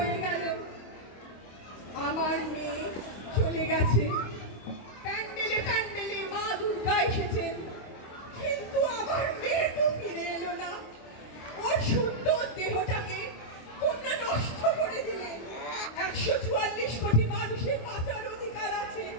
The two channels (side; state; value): right; late; 26 ms